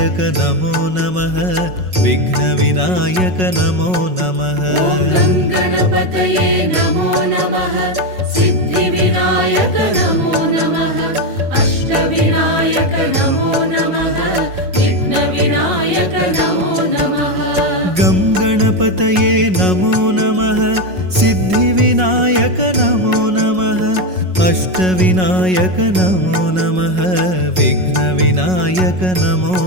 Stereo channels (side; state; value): left; late; 5.4 ms